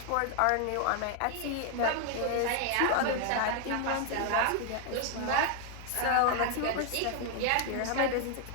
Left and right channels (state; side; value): different; both; correlation 0.01